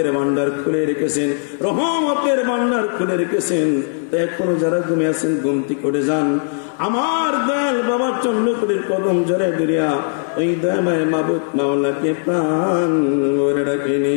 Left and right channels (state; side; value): silent; right; digital silence